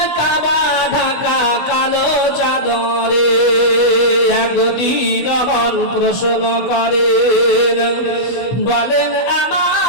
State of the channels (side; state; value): right; late; 16 ms